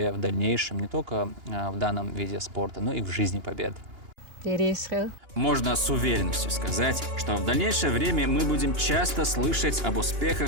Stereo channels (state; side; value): late; left; 2.9 ms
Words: в дальнейшем не только в данном виде спорта, но и в жизни побед. Можно с уверенностью сказать, что в дальнейшее время мы будем часто слышать об